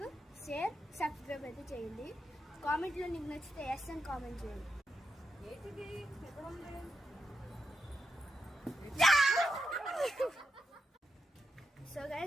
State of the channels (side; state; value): both; normal; correlation 0.86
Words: షేర్, సబ్స్క్రైబ్ అయితే చేయండి. కామెంట్లో నీకు నచ్చితే ఎస్ అని కామెంట్ చేయండి. సో